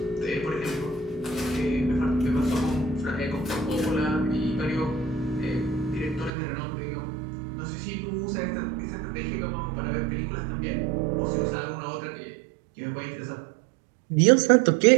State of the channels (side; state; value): left; drops out; at 6.3 s